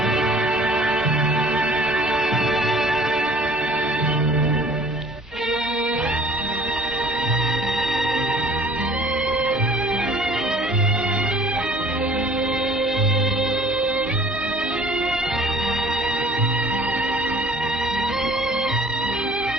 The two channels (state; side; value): normal; both; correlation 0.51